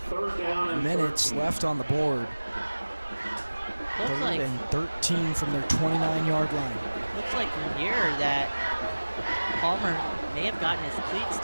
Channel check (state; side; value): inverted; both; correlation -1.00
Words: minutes left on the board. Looks 3rd like, and 13 from their 29-yard line. looks like from here that Palmer may have gotten his cleat